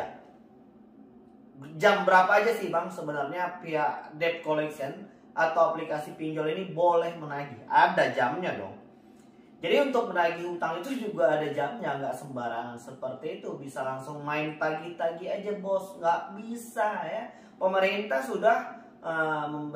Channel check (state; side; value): identical; both; correlation 1.00